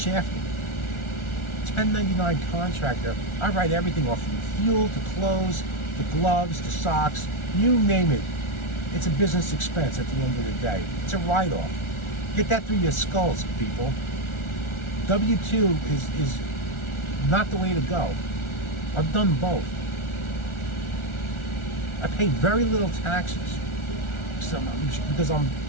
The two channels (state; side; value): late; right; 1.4 ms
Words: 1099 contractor, I write everything off from fuel to clothes, the gloves, the socks, you name it. It's a business expense at the end of the day. It's a write-off. Get that through your skulls, people. W-2 is not the way to go. I've done both. I pay very little taxes because I